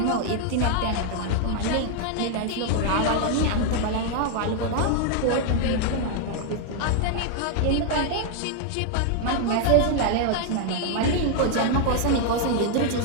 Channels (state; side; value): different; both; correlation 0.00